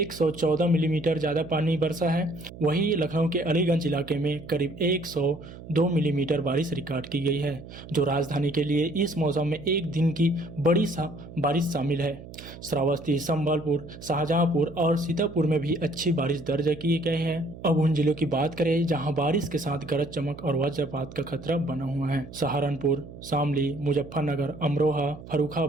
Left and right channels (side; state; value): right; noise; hum, 15 dB below the sound